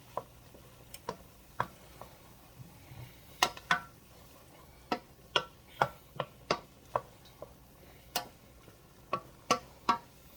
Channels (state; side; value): identical; both; correlation 1.00